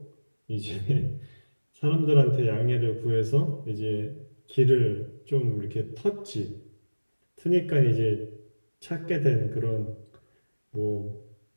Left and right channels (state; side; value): inverted; both; correlation -1.00